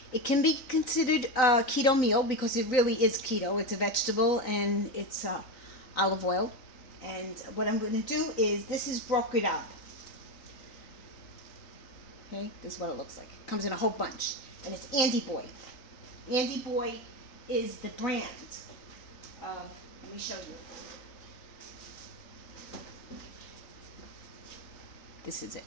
it can be considered a keto meal because it really is keto. It's a vegetable and it's olive oil. And what I'm going to do is, this is broken up. Okay, this is what it looks like. It comes in a whole bunch. And it's Andy Boy. Andy Boy is the brand. Let me show you. This is it.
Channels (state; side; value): late; right; 3.9 ms